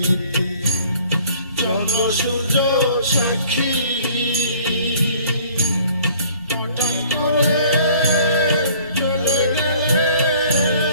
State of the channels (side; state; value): both; inverted; correlation -0.54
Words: চন্দ্র সূর্য সাক্ষী হঠাৎ করে চলে গেলে